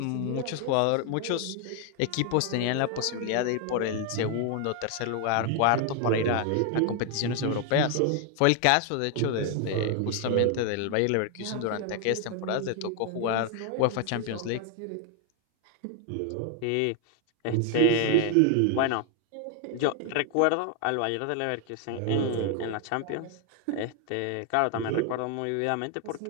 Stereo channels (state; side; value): different; both; correlation 0.01